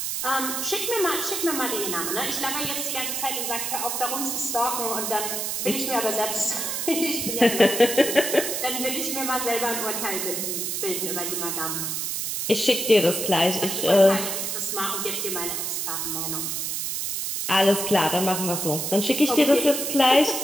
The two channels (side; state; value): right; noise; hiss, 2 dB below the sound